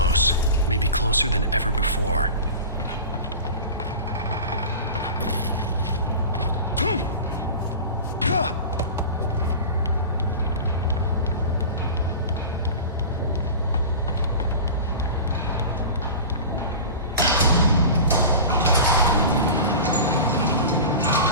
Maybe closer than ever before.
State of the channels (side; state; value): both; inverted; correlation -0.33